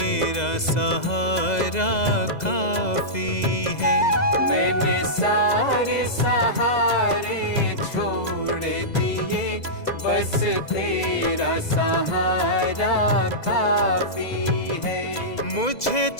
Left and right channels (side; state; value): right; late; 2.0 ms